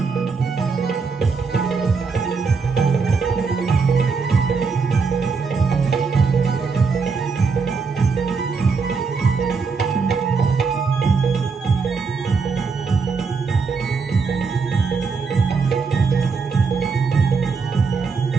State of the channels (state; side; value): quieter; left; 4.9 dB